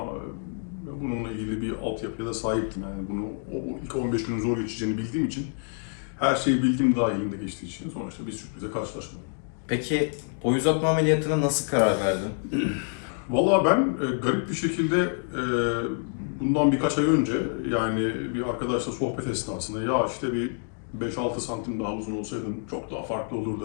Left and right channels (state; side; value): silent; right; 57 dB below the other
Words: bununla ilgili bir altyapıya da sahiptim. Yani bunu o ilk 15 günün zor geçeceğini bildiğim için her şeyi bildiğim dahilinde geçtiği için sonuçta bir sürprize karşılaşmadım. Peki boy uzatma ameliyatına nasıl karar verdin? Vallahi ben garip bir şekilde bundan birkaç ay önce yani bir arkadaşla sohbet esnasında ya işte bir 5-6 santim daha uzun olsaydın çok daha farklı